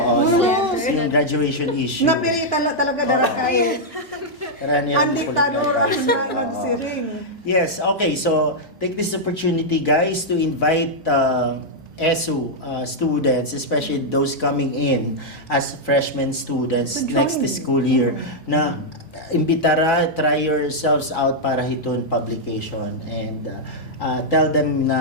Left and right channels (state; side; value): normal; both; correlation -0.04